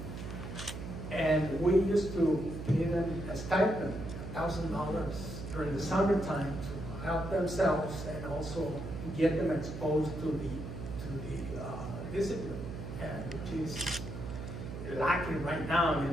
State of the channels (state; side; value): noise; right; hum, 8 dB below the sound